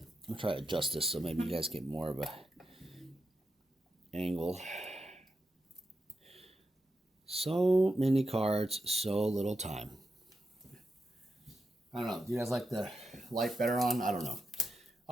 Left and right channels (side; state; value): both; normal; correlation 0.87